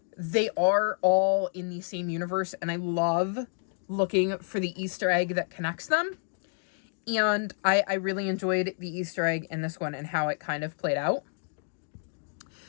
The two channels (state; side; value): silent; right; digital silence